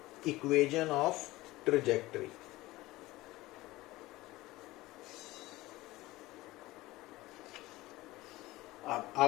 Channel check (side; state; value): right; quieter; 18.7 dB